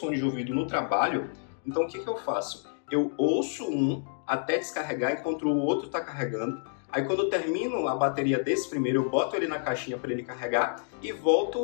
de ouvido no trabalho, então o que eu faço? Eu ouço um até descarregar enquanto o outro está carregando. Aí quando eu termino a bateria desse primeiro, eu boto ele na caixinha para ele carregar e volto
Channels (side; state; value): right; silent; digital silence